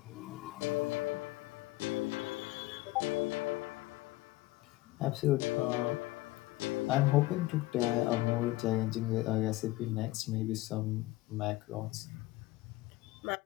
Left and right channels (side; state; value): right; quieter; 18.7 dB